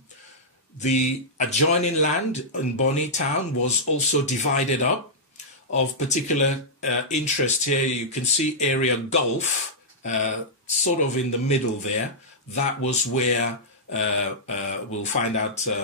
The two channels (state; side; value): normal; both; correlation -0.11